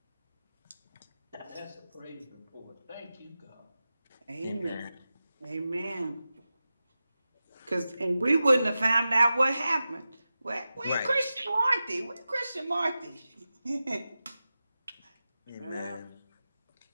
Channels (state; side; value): inverted; both; correlation -0.94